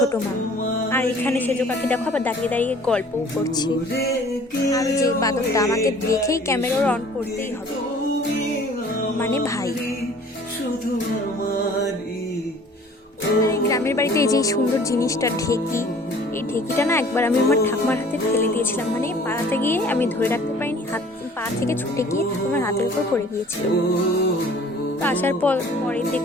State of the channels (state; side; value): normal; both; correlation 0.51